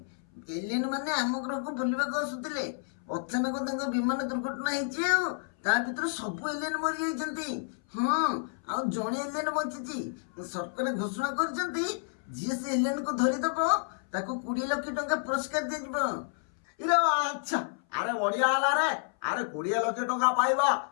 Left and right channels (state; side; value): silent; right; 58 dB below the other